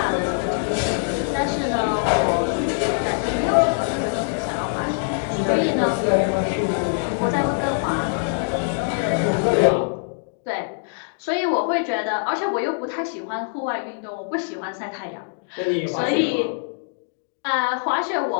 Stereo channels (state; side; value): silent; right; digital silence